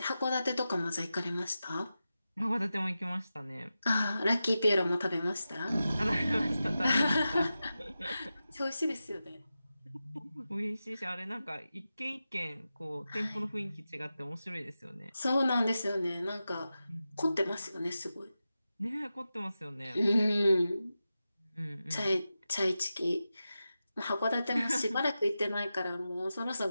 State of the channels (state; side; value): inverted; both; correlation -0.92